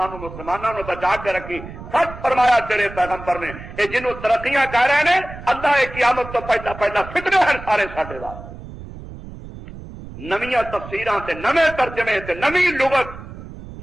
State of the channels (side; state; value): right; noise; rumble, 13 dB below the sound